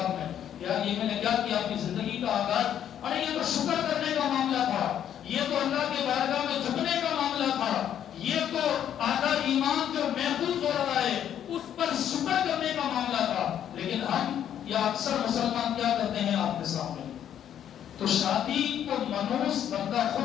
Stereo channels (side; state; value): right; quieter; 10.0 dB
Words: میں، یار یہ میں نے کیا کیا، اپنی زندگی کا آغاز، ارے یہ تو شکر کرنے کا معاملہ تھا، یہ تو اللہ کے بارگاہ میں جھکنے کا معاملہ تھا، یہ تو آدھا ایمان جو محفوظ ہو رہا ہے اس پر شکر کرنے کا معاملہ تھا۔ لیکن ہم یا اکثر مسلمان کیا کرتے ہیں آپ کے سامنے، تو شادی کو منحوس بندہ